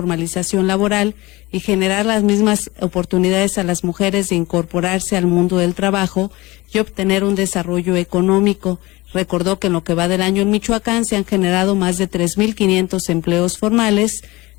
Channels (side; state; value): right; quieter; 21.5 dB